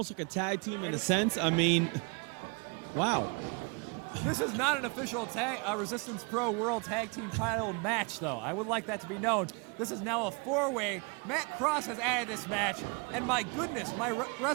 like a tag team in a sense. I mean, wow. This is not an official Resistance Pro World Tag Team title match, though. I would like that to be known. This is now a four-way. Matt Cross has added this match, and my goodness, my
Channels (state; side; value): quieter; left; 32.5 dB